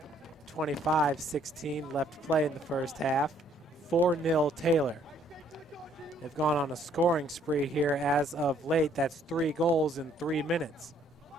25-16 left to play in the first half. 4-0 Taylor. They've gone on a scoring spree here as of late. That's 3 goals in 3 minutes.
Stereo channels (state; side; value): normal; both; correlation 0.65